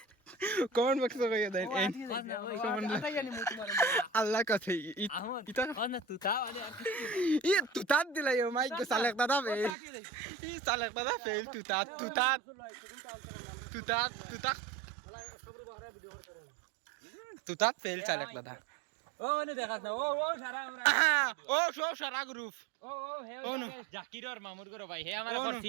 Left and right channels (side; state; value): left; drops out; at 9.8 s